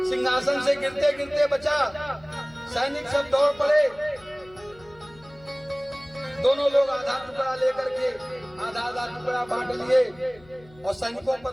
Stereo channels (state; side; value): noise; left; hum, 25 dB below the sound